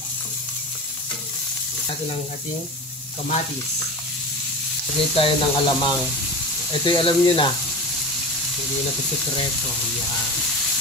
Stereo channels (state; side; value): normal; both; correlation 0.29